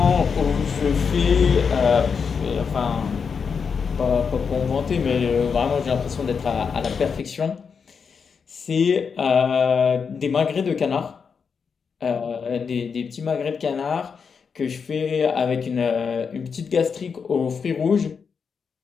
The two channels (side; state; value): right; quieter; 6.0 dB